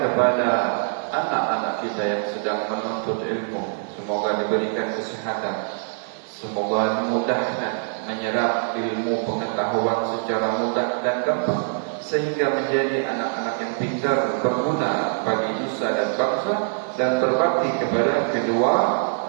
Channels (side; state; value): left; silent; digital silence